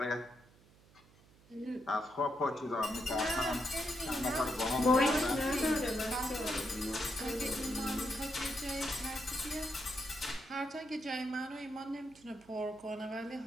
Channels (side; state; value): right; noise; hum, 27 dB below the sound